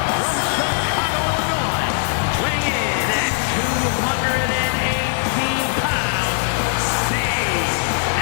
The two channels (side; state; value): right; silent; digital silence